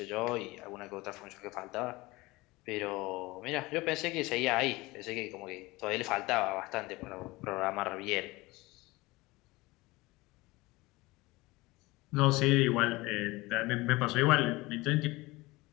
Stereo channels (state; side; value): quieter; right; 21.6 dB